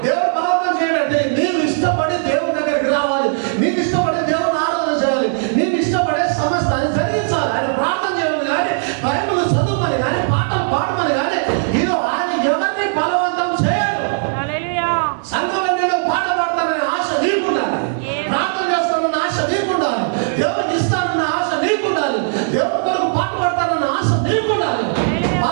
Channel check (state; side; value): silent; left; digital silence